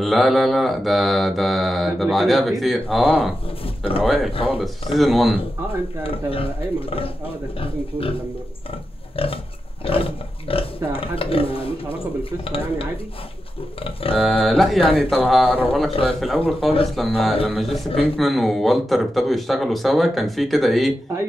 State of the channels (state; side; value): normal; both; correlation 0.89